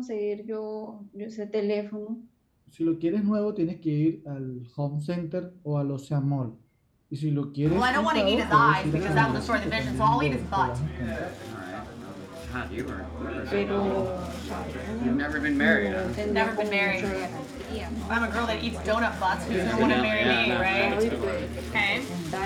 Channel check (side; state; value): both; identical; correlation 1.00